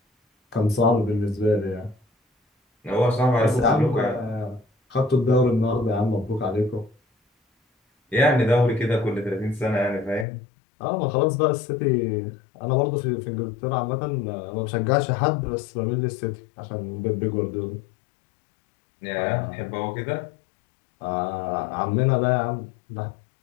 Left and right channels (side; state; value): right; drops out; at 10.2 s